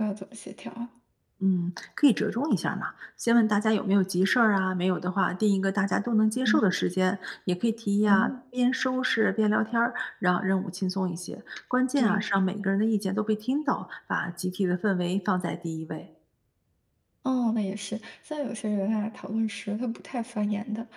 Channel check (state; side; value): identical; both; correlation 1.00